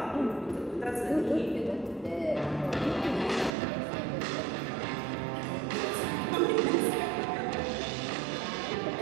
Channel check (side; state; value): left; drops out; at 3.5 s